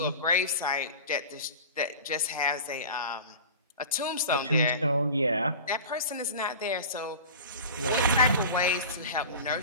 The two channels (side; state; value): both; inverted; correlation -0.36